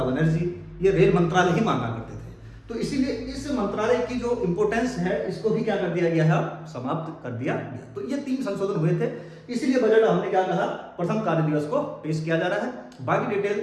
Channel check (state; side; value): identical; both; correlation 1.00